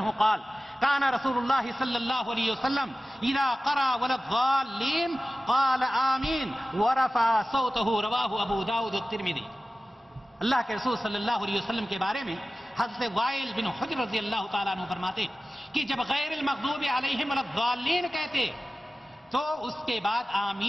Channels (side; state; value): both; normal; correlation 0.96